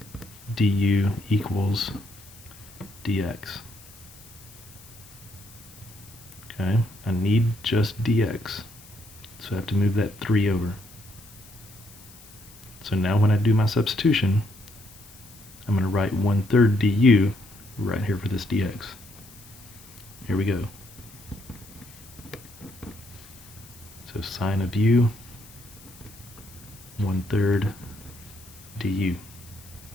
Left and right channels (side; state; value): left; noise; hiss, 21 dB below the sound